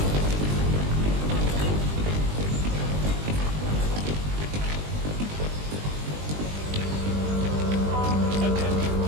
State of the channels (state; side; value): late; left; 20 ms